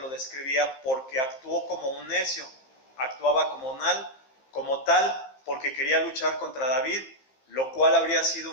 describía porque actuó como un necio. Actuaba como tal porque quería luchar contra David, lo cual habría sido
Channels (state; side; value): late; right; 15 ms